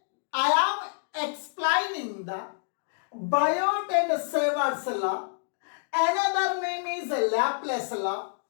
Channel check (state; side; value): silent; right; digital silence